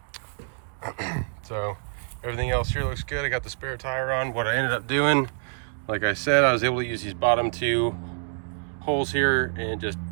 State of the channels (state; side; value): silent; left; digital silence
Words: So everything else here looks good. I got the spare tire on. What I ended up doing, like I said, I was able to use these bottom two holes here and just